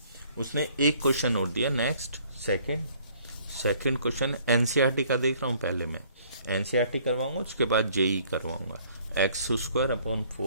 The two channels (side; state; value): both; inverted; correlation -0.60